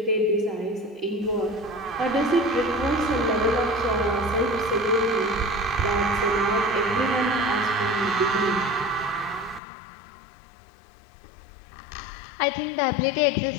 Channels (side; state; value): right; drops out; at 9.6 s